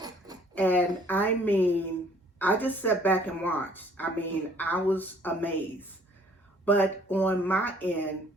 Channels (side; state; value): both; normal; correlation 0.58